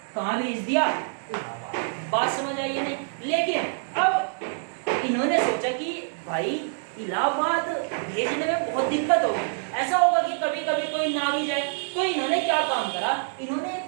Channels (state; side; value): silent; left; 61 dB below the other